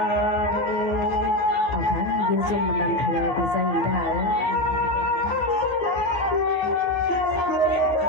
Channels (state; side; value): late; right; 14 ms